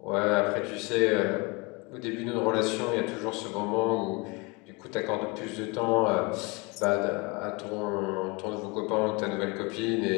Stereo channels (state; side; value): quieter; right; 27.8 dB